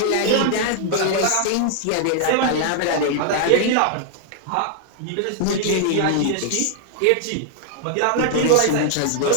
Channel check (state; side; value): different; both; correlation 0.00